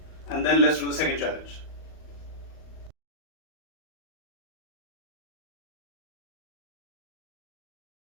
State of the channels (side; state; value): right; late; 38 ms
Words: and then let's do the second challenge.